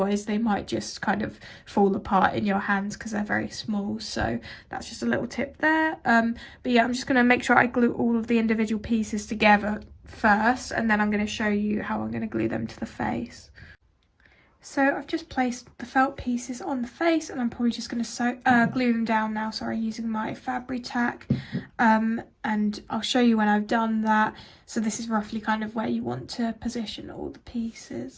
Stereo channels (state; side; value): identical; both; correlation 1.00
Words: they might just kind of fall apart in your hands because they're very small. So that's just a little tip there. But yeah, I'm just going to make sure I glue all of the individual pieces together first, and then I'm going to show you how I'm going to glue them to the face. So I've just placed the felt pieces on the face, and I'm probably just going to glue them down now, using my Fabri-Tac, and I'll show you when I've done that. So this is roughly kind of where you want to position all the